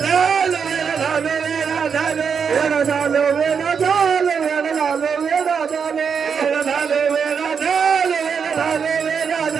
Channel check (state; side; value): quieter; left; 6.5 dB